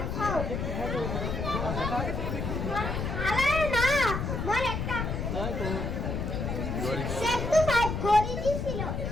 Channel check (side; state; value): left; noise; rumble, 2 dB below the sound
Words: খাও আরে না মোর একটা সেটু ফাইভ গড়ি দিছিল